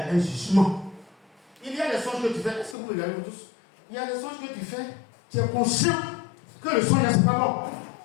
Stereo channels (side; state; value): right; drops out; at 2.8 s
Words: un jugement. Il y a des songes que tu fais. Est-ce que vous regardez tous? Il y a des songes que tu fais. Tu es conscient que le songe n'est pas bon.